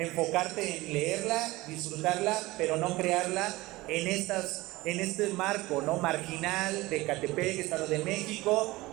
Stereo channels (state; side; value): quieter; left; 19.9 dB